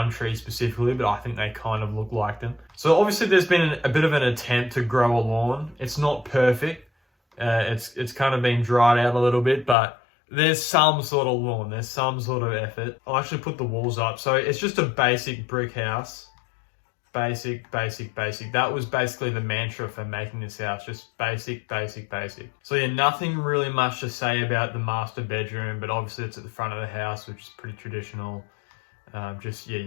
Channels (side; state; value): right; drops out; at 9.8 s